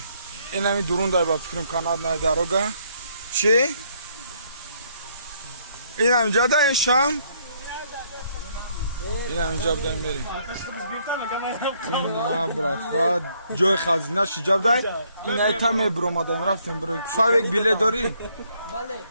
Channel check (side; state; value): both; inverted; correlation -0.69